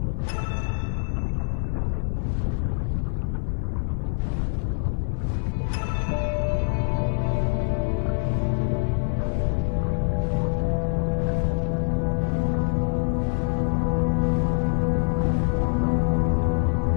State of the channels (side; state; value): right; silent; 62 dB below the other